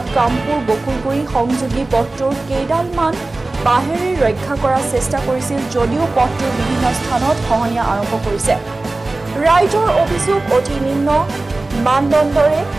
কামপুৰ বকুলগুৰি সংযোগী পথটোৰ কেইডালমান বাঁহেৰে ৰক্ষা কৰাৰ চেষ্টা কৰিছিল যদিও পথটোৰ বিভিন্ন স্থানত খহনীয়া আৰম্ভ কৰিছে। ৰাইজৰ অভিযোগ অতি নিম্ন মানদণ্ডৰে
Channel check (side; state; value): left; quieter; 3.1 dB